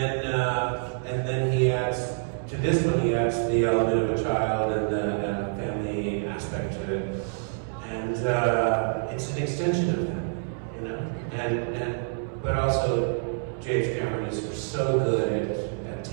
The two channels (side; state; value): left; silent; 60 dB below the other